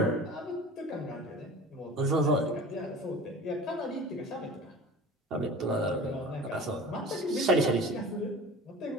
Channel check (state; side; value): normal; both; correlation 0.40